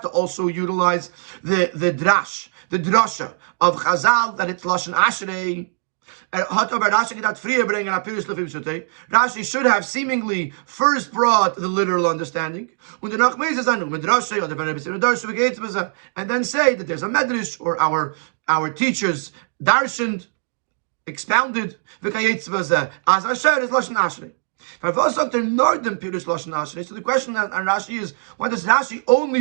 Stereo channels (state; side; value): silent; left; digital silence